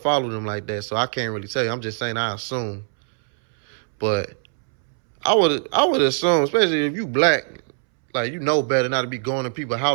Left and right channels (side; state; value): left; silent; 64 dB below the other